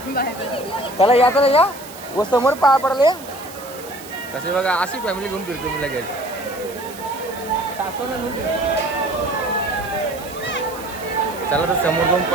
चला या या व समोर पाया पडले कसे बघा. अशी फॅमिली घेऊन फिरतो मी लगेच. सासूला घेऊन चला तर समोर जाऊन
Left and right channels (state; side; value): noise; right; hiss, 16 dB below the sound